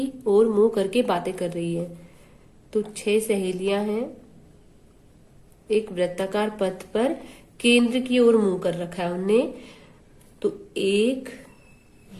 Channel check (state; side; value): identical; both; correlation 1.00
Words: ओर मुंह करके बातें कर रही हैं। तो 6 सहेलियां हैं, एक वृत्ताकार पथ पर केंद्र की ओर मुंह कर रखा है उनने। तो 1